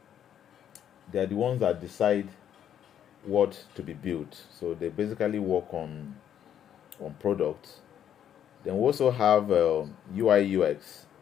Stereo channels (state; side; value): quieter; right; 9.7 dB